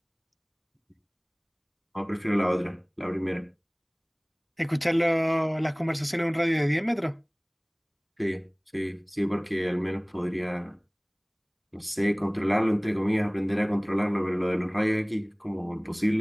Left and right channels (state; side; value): identical; both; correlation 1.00